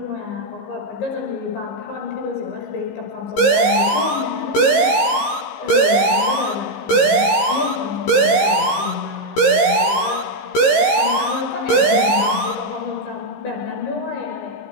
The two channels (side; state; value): right; late; 15 ms